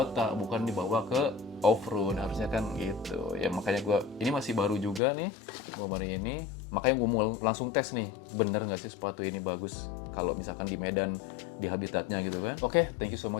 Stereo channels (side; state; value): right; drops out; at 5.0 s